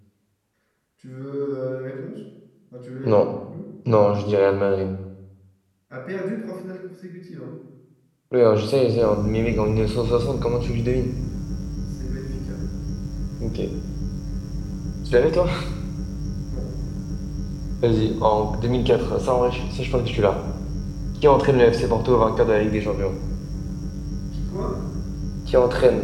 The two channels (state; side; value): identical; both; correlation 1.00